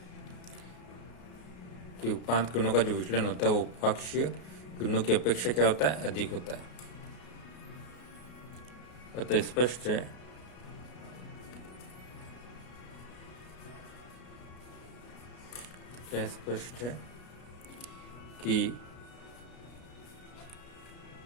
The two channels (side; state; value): right; late; 33 ms